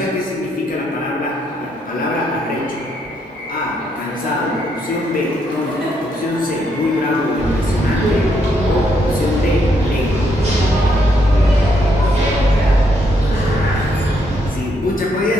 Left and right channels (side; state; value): both; normal; correlation 0.75